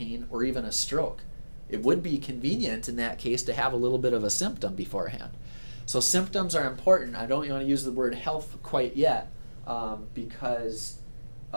or even a stroke. It would be convenient in that case to have a little bit of a symptom beforehand. So symptoms are important. I don't want to use the word health quite yet because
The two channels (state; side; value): inverted; both; correlation -1.00